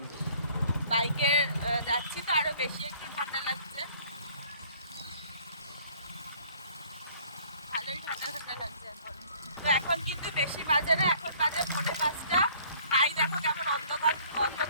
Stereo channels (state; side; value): inverted; both; correlation -0.56